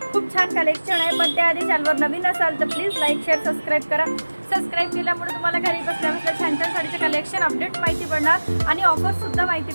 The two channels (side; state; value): both; inverted; correlation -1.00